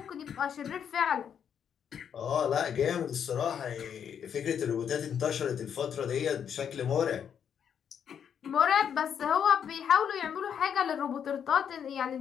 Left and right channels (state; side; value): quieter; right; 8.1 dB